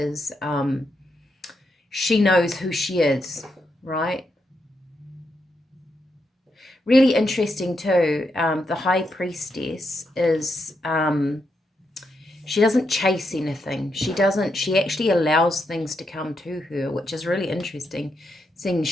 she knows who she is, right? Really interesting too. The High Priestess is, she doesn't chase anything. She actually allows things to come to her, which is really interesting, seeing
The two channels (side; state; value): both; normal; correlation 0.82